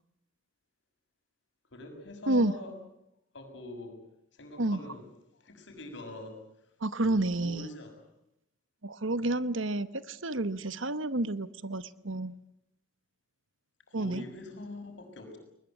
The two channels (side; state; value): both; normal; correlation 0.44